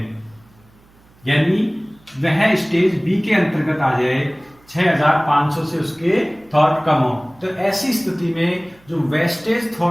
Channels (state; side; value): noise; right; hum, 29 dB below the sound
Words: यानी वह स्टेज बी के अंतर्गत आ जाए, 6,500 से उसके थॉट कम हो, तो ऐसी स्थिति में जो वेस्टेज